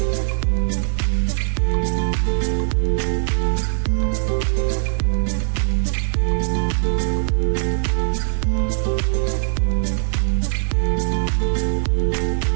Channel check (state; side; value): silent; left; 65 dB below the other